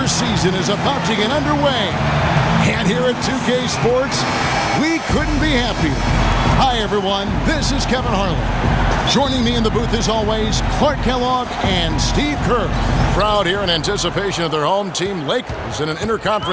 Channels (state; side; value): identical; both; correlation 1.00